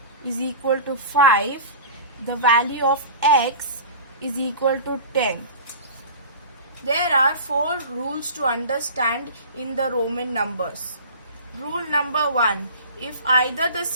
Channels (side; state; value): both; inverted; correlation -0.37